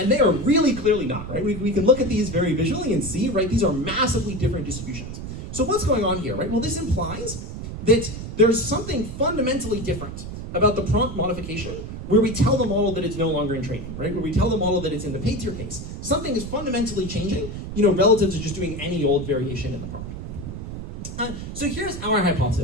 they are really clearly not, right? We can look at these very visually and see, right, these are massively different distributions. So what's going on here, right? Well, this implies that there's something fundamentally different about the prompt modification where we tell the model that it's no longer in training, right? Where we tell the model that it's in the paid tier case. Something is fundamentally changing, relative to just doing any old variation in the prompt. So here's our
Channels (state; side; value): noise; right; rumble, 8 dB below the sound